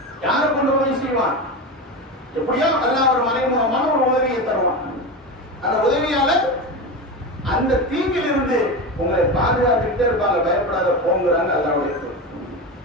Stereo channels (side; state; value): both; normal; correlation 0.22